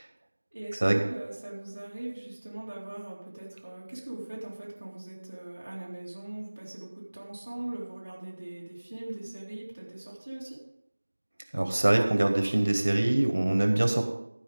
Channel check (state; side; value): inverted; both; correlation -1.00